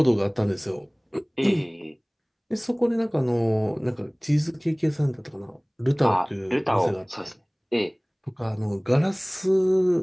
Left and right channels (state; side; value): identical; both; correlation 1.00